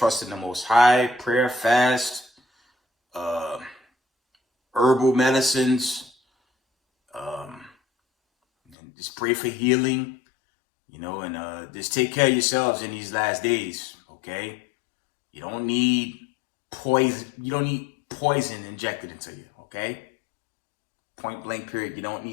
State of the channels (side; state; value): right; drops out; at 8.8 s